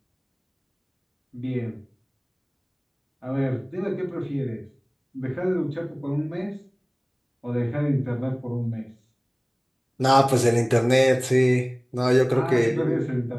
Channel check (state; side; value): identical; both; correlation 1.00